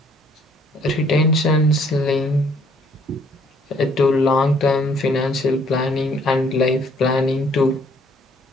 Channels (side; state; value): both; normal; correlation 0.63